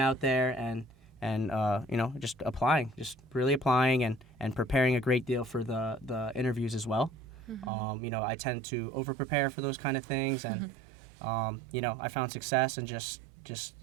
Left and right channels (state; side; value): drops out; left; at 7.7 s